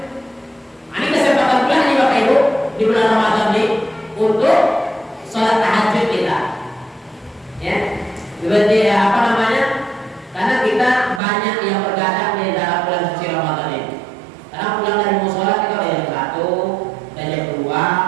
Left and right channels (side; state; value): left; drops out; at 11.2 s